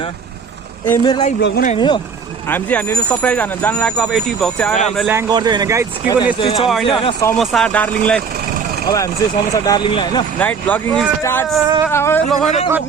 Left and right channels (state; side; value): quieter; left; 5.9 dB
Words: ए मेरो लागि भ्लग बनाइनु हो हामी चाहिँ हामीले सरप्राइज हान्न जानु लागेको अब 80 भ्लग चाहिँ आएर हामीलाई ल्याङ गर्दै होइन गाइज के पनि यस्तो छ होइन समोसा डार्लिङलाई अब हामी चाहिँ समोसा डार्लिङलाई होइन नाइट भ्लगिङ स्टार्ट्स